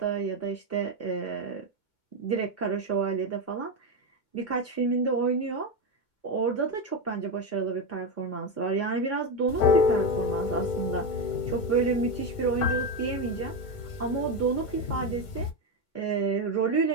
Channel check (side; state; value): right; late; 2.2 ms